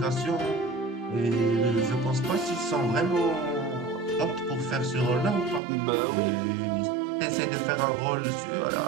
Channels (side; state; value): left; drops out; at 5.6 s